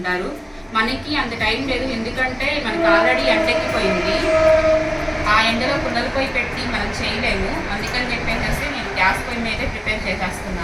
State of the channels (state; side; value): identical; both; correlation 1.00